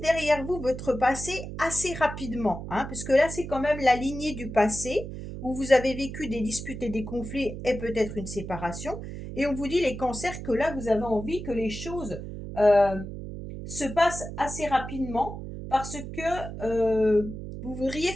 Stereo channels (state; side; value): noise; right; hum, 9 dB below the sound